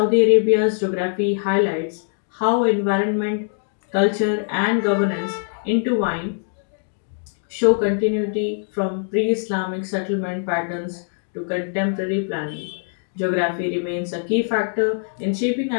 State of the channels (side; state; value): right; silent; digital silence